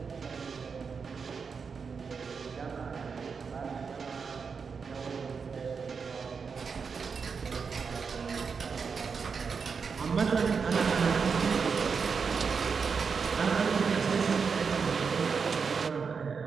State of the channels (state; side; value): quieter; left; 5.6 dB